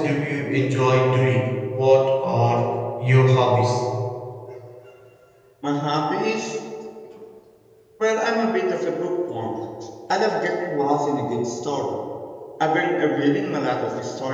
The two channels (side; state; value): both; identical; correlation 1.00